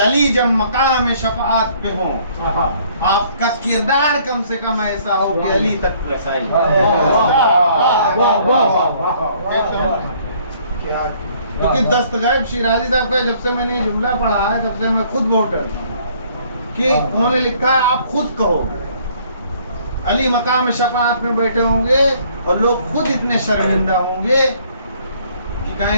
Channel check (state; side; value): inverted; both; correlation -0.61